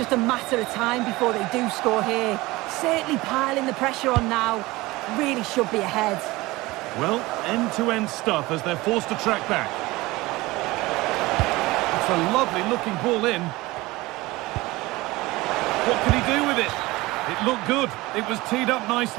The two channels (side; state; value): left; quieter; 20.5 dB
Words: a matter of time before they do score here. Certainly piling the pressure on now. Really should be ahead. Well, end-to-end stuff as they're forced to track back. It's a lovely looking ball in. What can he do with it? It looked good. It was teed up